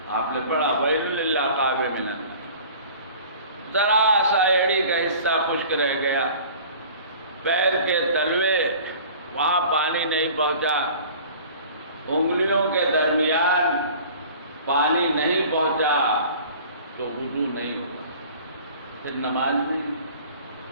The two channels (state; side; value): inverted; both; correlation -0.45